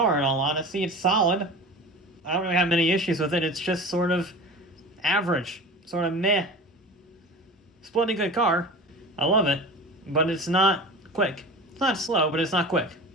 in all honesty. It's solid. I don't really have many issues with it. It's just sort of average, sort of meh. It's a bloody good car. I love it, but it's not quick. It's not slow, but it's not quick.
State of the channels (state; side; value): normal; both; correlation 0.35